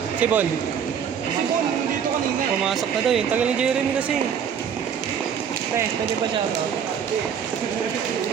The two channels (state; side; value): quieter; left; 7.8 dB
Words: Si Bon. Si Bon, dito kanina. Pumasok na daw eh. Tagal ni Jeremy kasi. Pwede pa shout out.